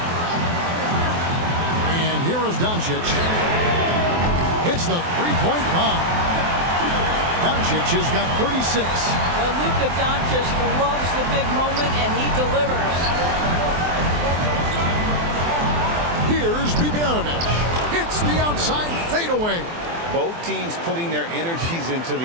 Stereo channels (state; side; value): late; left; 23 ms